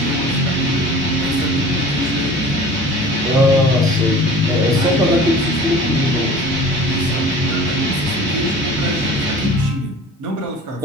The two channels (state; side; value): normal; both; correlation 0.42